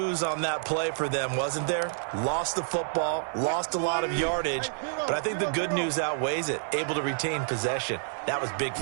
on that play for them, wasn't there? Lost the football, lost a lot of yardage, but I think the good news outweighs it. Able to retain possession. That was big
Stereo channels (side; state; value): left; silent; digital silence